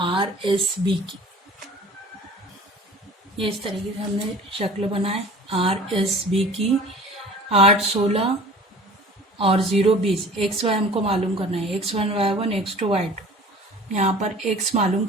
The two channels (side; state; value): both; normal; correlation 0.44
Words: r s b की। ये इस तरीके से हमने शक्ल बनाए r s b की। 8 16 और 0 20। x y हमको मालूम करना है, x1 y1, x2 y2। यहाँ पर x मालूम